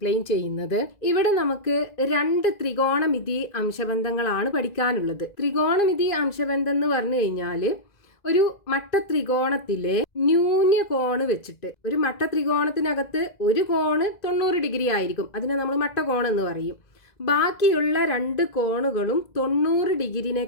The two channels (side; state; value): right; late; 2.0 ms